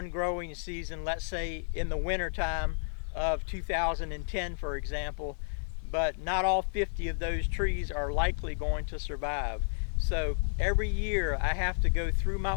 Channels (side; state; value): right; silent; digital silence